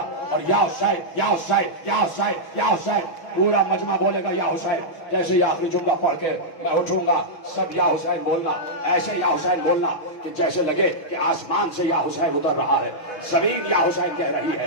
اور یا حسین یا حسین یا حسین یا حسین، پورا مجمع بولے گا یا حسین۔ جیسے ہی آخری جملہ پڑھ کے میں اٹھوں گا سب یا حسین بولنا، ایسے یا حسین بولنا کہ جیسے لگے کہ آسمان سے یا حسین اتر رہا ہے، زمین یا حسین کہہ رہی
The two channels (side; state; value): right; late; 6.1 ms